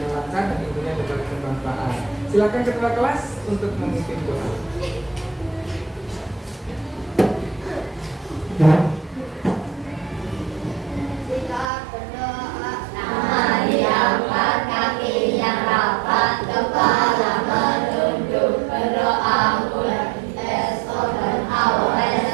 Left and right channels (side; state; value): left; drops out; at 11.7 s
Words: lancar dan tentunya dapat bermanfaat. Silakan ketua kelas untuk memimpin doa. Kita berdoa. Tangan diangkat, kaki yang rapat, kepala menunduk, berdoa mulai esokan awal